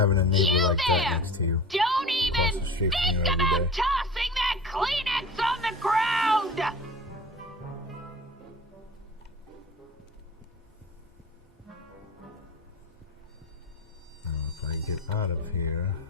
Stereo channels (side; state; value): both; normal; correlation 0.38